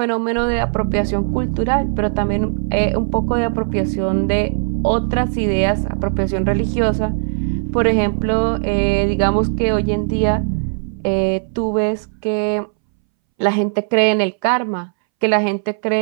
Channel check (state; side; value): silent; left; 64 dB below the other